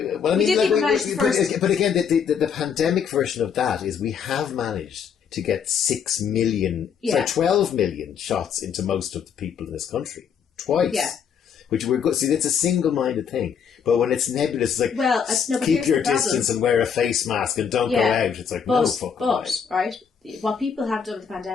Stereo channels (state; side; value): quieter; right; 7.1 dB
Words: I mean, but again, the pandemic version of that is we have managed to get 12 million shots into most of the people in this country. Twice. Yeah. Which we're good. See, it's a single-minded thing. But when it's nebulous, it's like, keep your distance and wear a face mask and don't go out. It's like, no fucking way. Right? What people have done with the